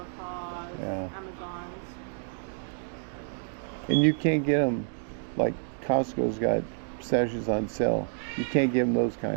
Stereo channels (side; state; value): left; silent; 59 dB below the other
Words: Yeah. Amazons. And you can't get them, like Costco's got pistachios on sale. You can't give them those